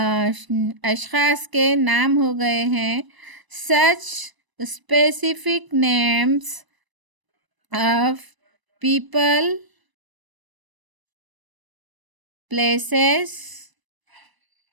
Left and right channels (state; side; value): late; left; 1.0 ms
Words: अशख़ास के नाम हो गए हैं। सच specific names of people, places